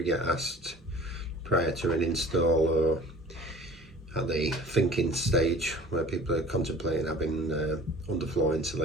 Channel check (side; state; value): both; normal; correlation 0.45